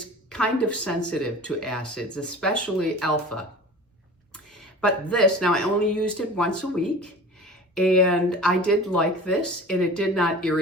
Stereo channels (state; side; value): normal; both; correlation 0.39